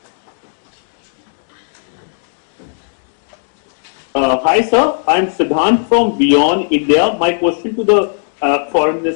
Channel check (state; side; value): silent; right; digital silence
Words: Hi sir, I am Siddhant from Beyond India. My question to the Foreign